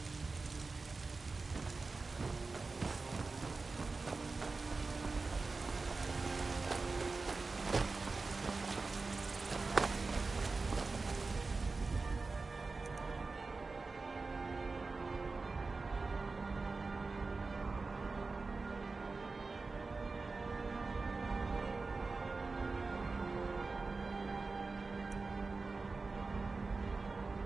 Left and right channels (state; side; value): quieter; left; 3.9 dB